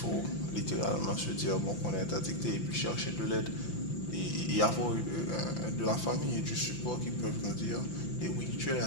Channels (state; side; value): late; right; 5.8 ms